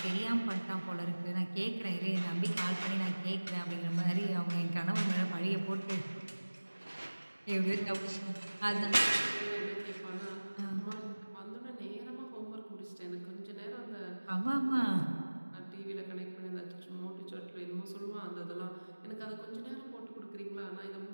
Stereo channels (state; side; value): inverted; both; correlation -1.00